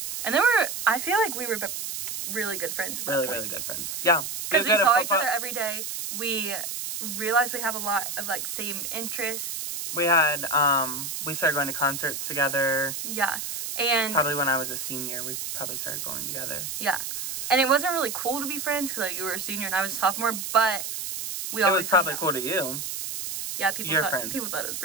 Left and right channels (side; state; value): right; noise; hiss, 5 dB below the sound